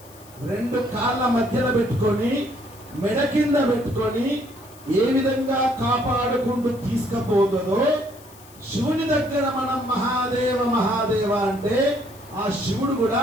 రెండు కాళ్ళ మధ్యలో పెట్టుకొని మెడ కింద పెట్టుకొని ఏ విధంగా కాపాడుకుంటూ తీసుకుపోతుందో శివుని దగ్గర మనం మహాదేవ మహాదేవ అంటే ఆ శివుడు కూడా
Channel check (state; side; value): noise; left; hiss, 23 dB below the sound